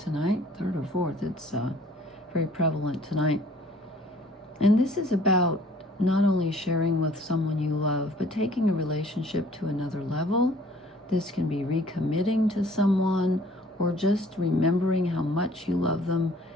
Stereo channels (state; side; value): normal; both; correlation 0.55